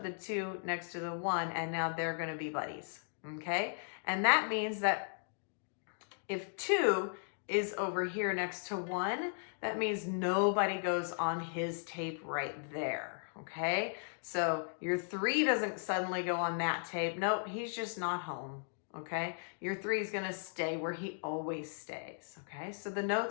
the 2 next to the 1, and now they're gonna be buddies, okay? And that means that if 2 is over here next to 1, that means nobody goes on his tape right there, okay? So your 3 doesn't suddenly go on that tape. Nope, he's just not home, okay? Your 3 is gonna stay where he always stays, okay? So the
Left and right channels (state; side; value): silent; right; digital silence